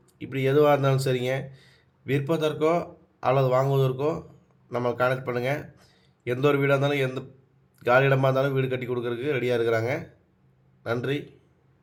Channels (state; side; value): identical; both; correlation 1.00